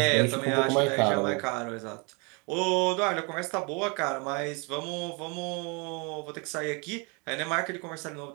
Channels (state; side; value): quieter; left; 31.7 dB